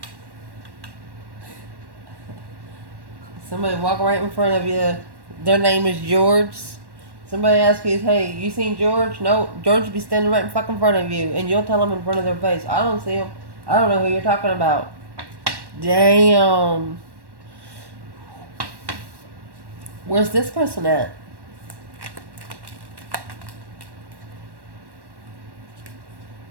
Somebody walk right in front of you. Their name is George. Somebody asks you, hey, you seen George? No, George will be standing right in fucking front of you. And you'll tell them in front of their face, I don't see him. I don't know who you're talking about. Damn. Where's this person at?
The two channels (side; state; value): left; late; 1.1 ms